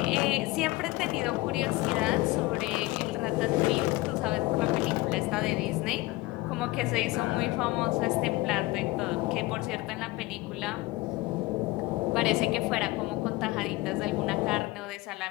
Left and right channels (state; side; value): quieter; right; 20.5 dB